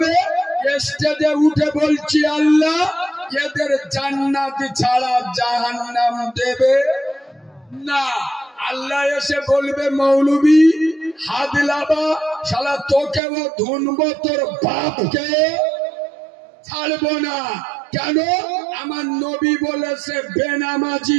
স্টেজে উঠে বলছি, আল্লাহ এদের জান্নাত ছাড়া জাহান্নাম দেবে না। আল্লাহ এসে বলবে, মৌলবী হাদলাবা, শালা তোকেও ধুনবো, তোর বাপকে ছাড়বো না। কেন? আমার নবী বলেছে বেনামাজি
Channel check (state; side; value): drops out; left; at 13.2 s